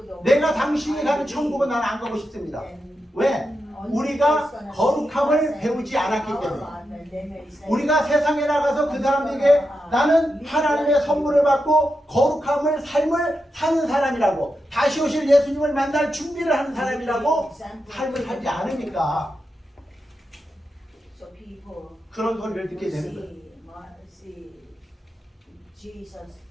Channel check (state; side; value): normal; both; correlation 0.87